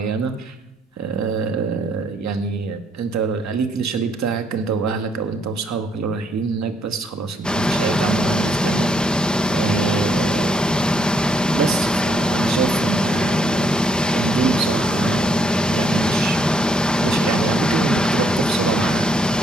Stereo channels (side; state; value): both; normal; correlation 0.71